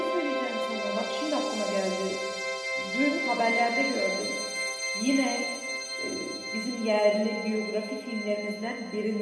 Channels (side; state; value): both; identical; correlation 1.00